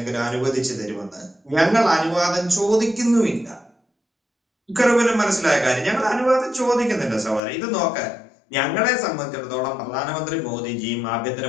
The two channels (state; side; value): drops out; right; at 7.4 s